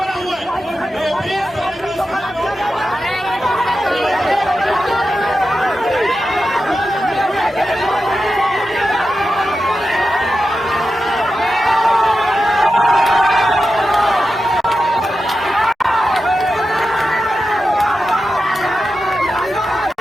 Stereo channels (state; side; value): normal; both; correlation 0.91